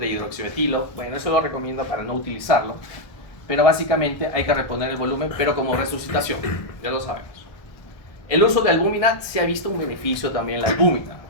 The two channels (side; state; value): right; late; 1.6 ms